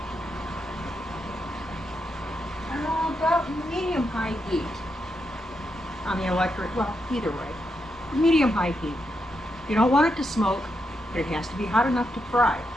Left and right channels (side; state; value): both; normal; correlation 0.83